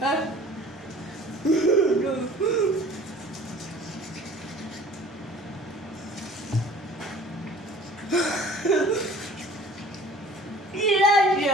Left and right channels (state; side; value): normal; both; correlation 0.48